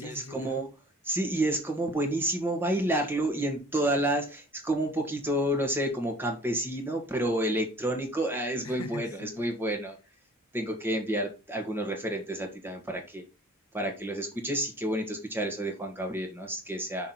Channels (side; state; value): both; normal; correlation 0.49